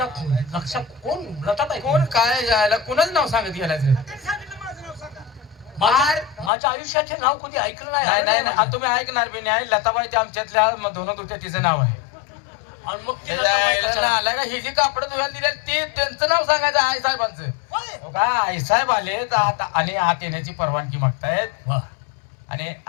लक्षात कोण लताबाई कोण काय जायला कोणाच नाव सांगत गेलायचं त्यांनी सांगितलं माझं नाव सांगा. माझ्या आयुष्यात हे नाव कधी ऐकलं नाही नाही नाही नाही आता तुम्ही ऐकणार बी नाही लताबाई ते आमच्यातल्या दोन होत्या तिचं नाव आहे आणि मग ती लताबाई कशाला? आलाय का ही जी कापड धुवायला दिली ते त्यांचं नाव सांगायचं आई साहेबांचं होय. हो का आई साहेब आलेत आता आणि आत येण्याची परवानगी मागतायत वा. आणि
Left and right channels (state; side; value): drops out; right; at 6.5 s